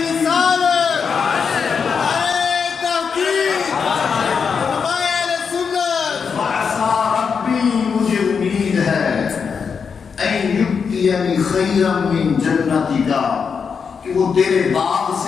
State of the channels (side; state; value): right; quieter; 6.1 dB